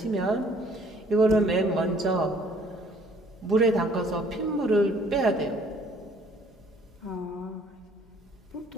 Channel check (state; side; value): normal; both; correlation 0.59